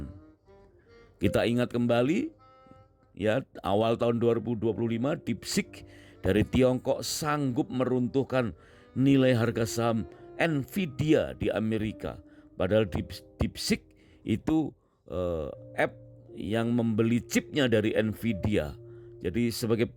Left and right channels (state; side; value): identical; both; correlation 1.00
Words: Kita ingat kembali, ya, awal tahun 2025 DeepSeek dari Tiongkok sanggup meruntuhkan nilai harga saham Nvidia di Amerika. Padahal DeepSeek itu app yang membeli chipnya dari Nvidia. Jadi sebagai